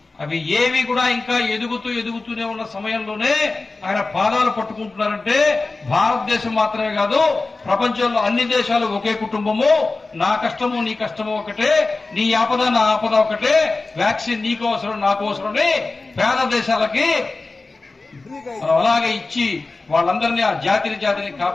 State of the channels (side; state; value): right; quieter; 3.5 dB